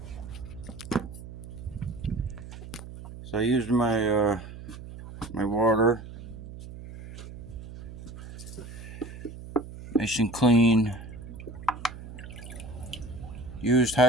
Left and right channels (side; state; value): right; noise; hum, 13 dB below the sound